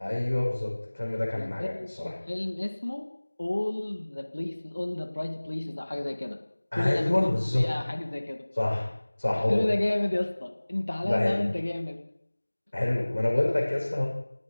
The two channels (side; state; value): both; inverted; correlation -1.00